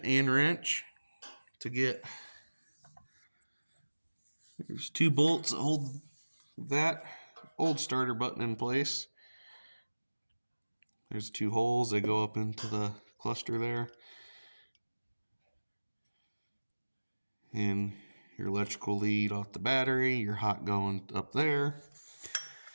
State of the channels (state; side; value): inverted; both; correlation -1.00